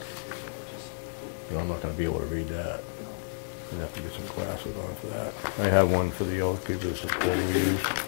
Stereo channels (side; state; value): right; silent; 58 dB below the other